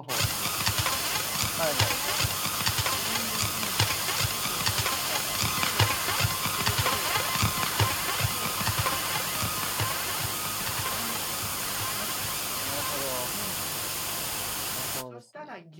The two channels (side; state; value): both; identical; correlation 1.00